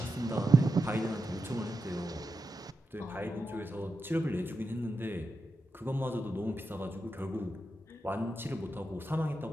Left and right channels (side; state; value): both; normal; correlation 0.88